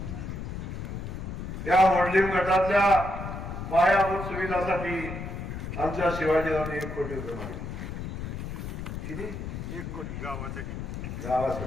या मोडलीम गटातल्या पायाभूत सुविधासाठी आमच्या शिवाजीरावांनी 1 कोटी रुपये मागितले. किती? 1 कोटी गावासाठी.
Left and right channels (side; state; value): left; noise; rumble, 6 dB below the sound